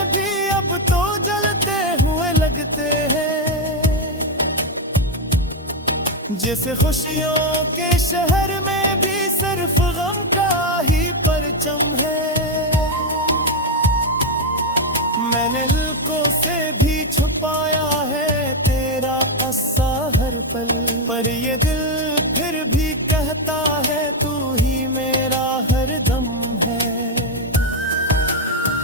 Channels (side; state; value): both; normal; correlation 0.05